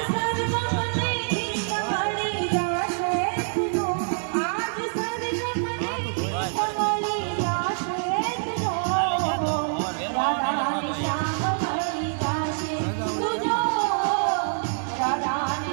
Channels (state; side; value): silent; left; 61 dB below the other